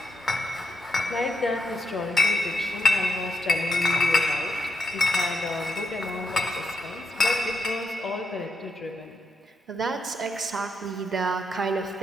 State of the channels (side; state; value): both; normal; correlation 0.83